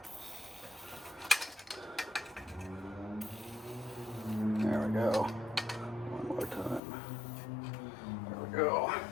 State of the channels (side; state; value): right; drops out; at 6.8 s